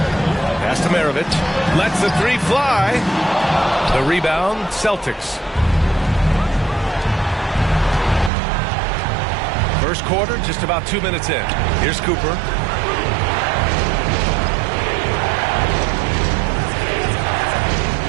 Pass to Maravich. Lets the three fly. The rebound, Celtics. First quarter, just about 2 minutes in. Here's Cooper.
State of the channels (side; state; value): left; drops out; at 8.3 s